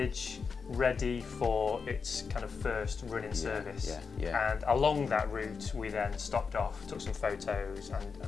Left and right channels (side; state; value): right; quieter; 5.3 dB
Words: ready for its kind of first running service. And along that route we then stopped off, took some photos